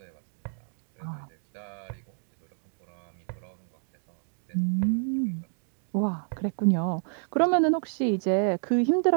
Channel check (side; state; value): left; silent; digital silence